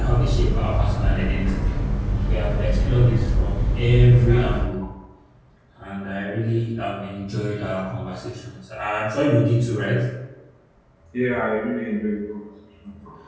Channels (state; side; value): identical; both; correlation 1.00